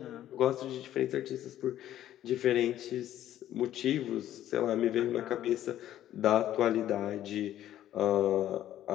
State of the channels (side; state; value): right; quieter; 12.3 dB